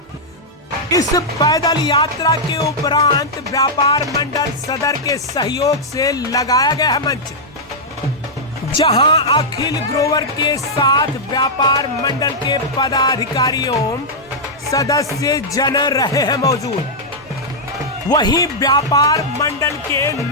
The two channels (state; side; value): normal; both; correlation -0.07